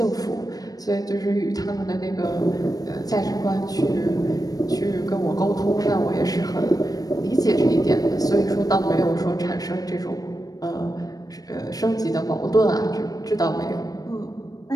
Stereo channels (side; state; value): right; late; 0.18 ms